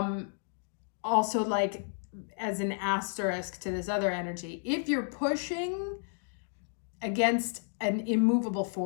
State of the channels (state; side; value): silent; right; digital silence